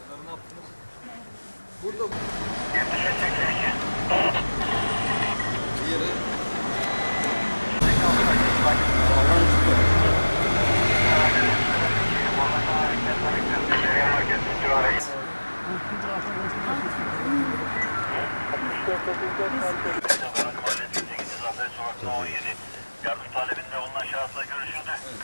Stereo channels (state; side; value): inverted; both; correlation -1.00